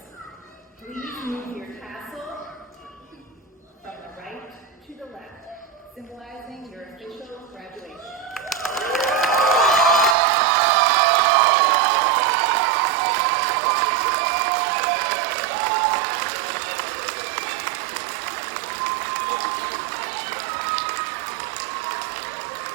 please move your tassel from the right to the left, symbolizing your official graduation.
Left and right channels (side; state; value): left; drops out; at 10.2 s